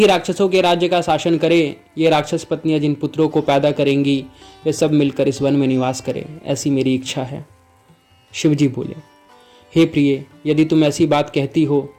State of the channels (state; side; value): identical; both; correlation 1.00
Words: राक्षसों के राज्य का शासन करे। ये राक्षस पत्नियां जिन पुत्रों को पैदा करेंगी वे सब मिलकर इस वन में निवास करें, ऐसी मेरी इच्छा है। शिवजी बोले, हे प्रिय, यदि तुम ऐसी बात कहती हो